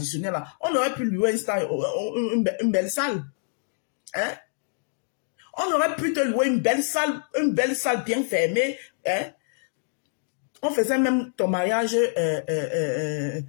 là, on aurait pu louer une belle salle. Hein? On aurait pu te louer une belle salle bien fermée. Hein? On faisait même ton mariage.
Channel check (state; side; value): silent; right; digital silence